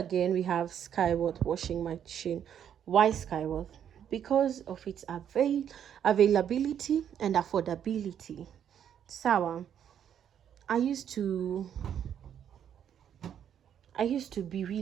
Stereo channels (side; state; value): left; quieter; 9.2 dB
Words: we have Skyward washing machine. Why Skyward? Because of its availability and affordability. Sawa, I used to be